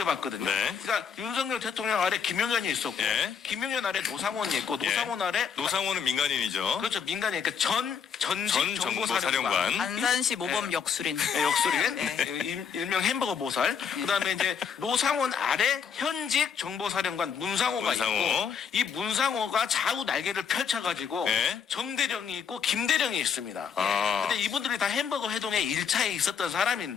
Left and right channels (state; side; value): quieter; right; 7.0 dB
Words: 네. 그러니까 윤석열 대통령 아래 김용현이 있었고 예. 김용현 아래 노상원이 있고 예. 노상원 아래 노상원은 민간인이죠. 그렇죠. 민간이 그러니까 전직 전 정보사령관. 정보사령관. 안산시 모범 역술인. 네, 역술인 일명 햄버거 보살. 그다음에 이제 노상원 아래 현 현직 정보사령관 문상호가 문상호. 있고 이 문상호가 좌우 날개를 펼쳐가지고 네. 정대령이 있고 김대령이 있습니다. 아. 근데 이분들이 다 햄버거 회동에 1차에 있었던